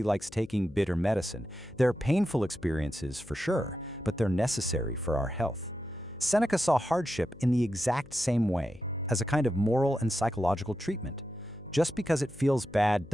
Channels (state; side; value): noise; left; hum, 22 dB below the sound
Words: likes taking bitter medicine. They're painful experiences for sure, but they're necessary for our health. Seneca saw hardship in the exact same way, as a kind of moral and psychological treatment. Just because it feels bad